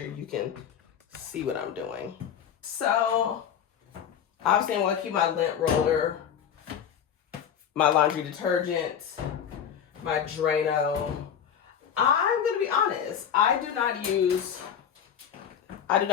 you can see what I'm doing. So obviously I want to keep my lint roller, my laundry detergent, my Drano. I'm going to be honest. I do not use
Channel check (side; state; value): right; quieter; 8.5 dB